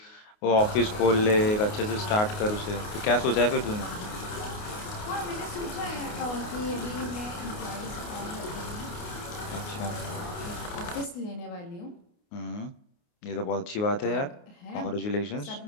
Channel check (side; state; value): right; late; 29 ms